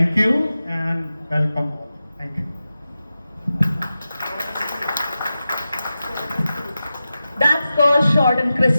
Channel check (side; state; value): both; inverted; correlation -0.93